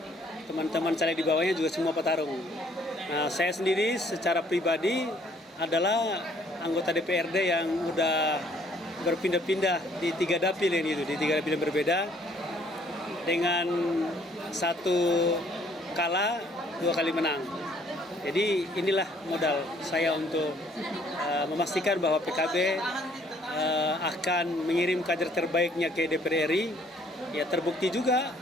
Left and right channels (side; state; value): both; normal; correlation 0.62